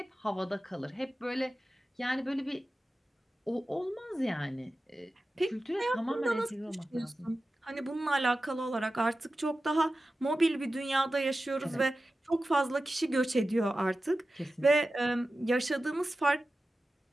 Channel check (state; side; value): normal; both; correlation 0.94